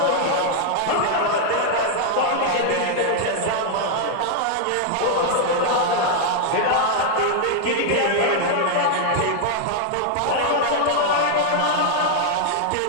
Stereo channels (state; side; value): different; both; correlation 0.00